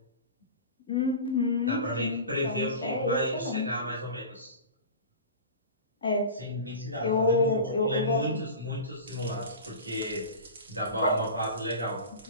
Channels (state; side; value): inverted; both; correlation -0.33